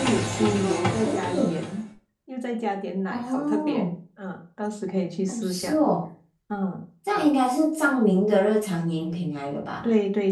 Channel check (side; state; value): both; identical; correlation 1.00